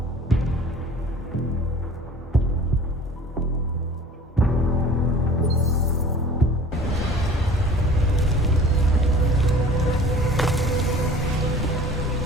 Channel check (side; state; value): both; normal; correlation 0.46